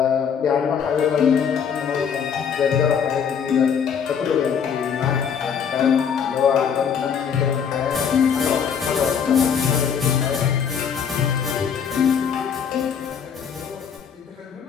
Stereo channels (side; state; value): right; quieter; 7.3 dB